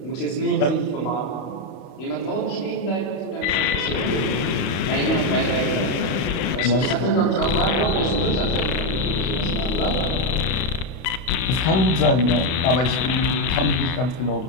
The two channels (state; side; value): late; right; 32 ms